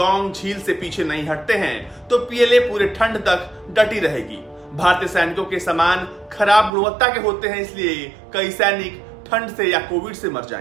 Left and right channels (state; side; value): drops out; left; at 6.7 s